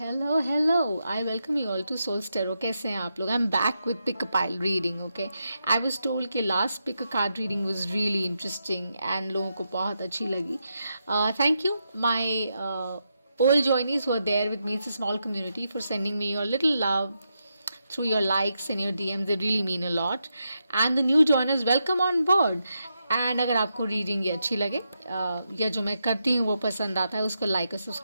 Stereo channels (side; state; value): both; inverted; correlation -0.84